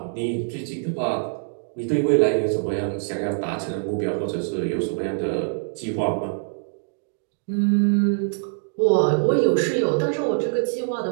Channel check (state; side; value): silent; left; digital silence